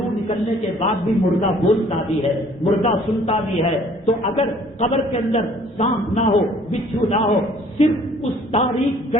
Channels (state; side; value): normal; both; correlation 0.56